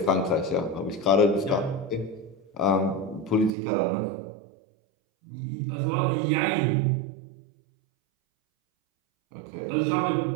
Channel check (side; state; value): left; drops out; at 3.5 s